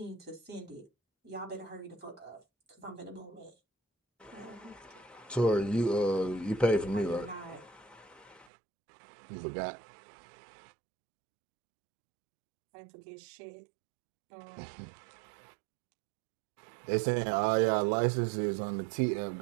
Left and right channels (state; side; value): drops out; left; at 8.5 s